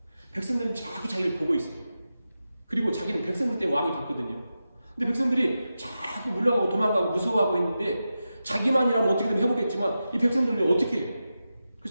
백성들은 자꾸 자기를 보고 있어요. 그리고 자기는 백성들 때문에 왕이 됐거든요. 근데 백성들이 자꾸 물러가고 도망가고 무서워하고 있는데 자기만이라면 어떻게든 해보겠지만 이 백성들은 어떻게 해요?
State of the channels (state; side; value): inverted; both; correlation -0.91